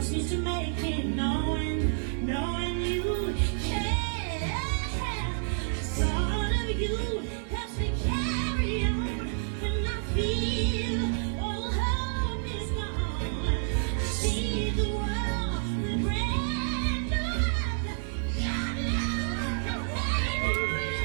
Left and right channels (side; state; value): left; silent; digital silence